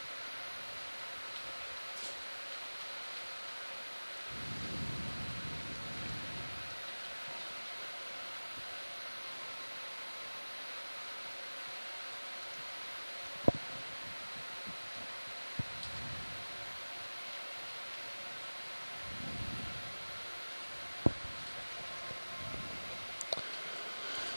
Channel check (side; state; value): both; inverted; correlation -1.00